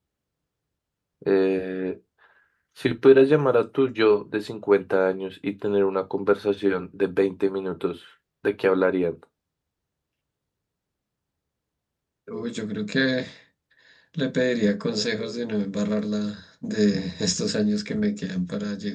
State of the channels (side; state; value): both; identical; correlation 1.00